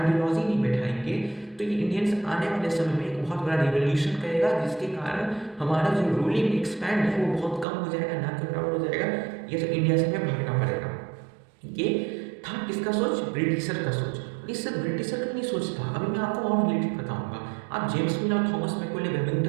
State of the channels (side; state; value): left; drops out; at 7.7 s